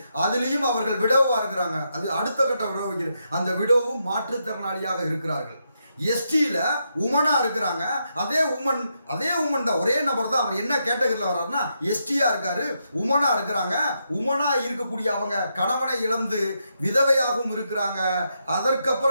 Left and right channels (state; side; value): inverted; both; correlation -0.82